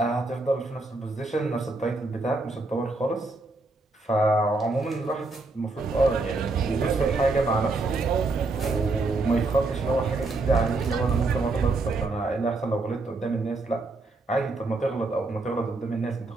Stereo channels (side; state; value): left; quieter; 3.3 dB